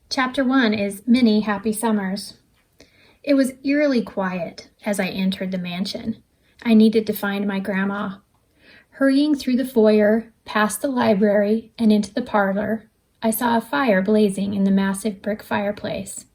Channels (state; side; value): identical; both; correlation 1.00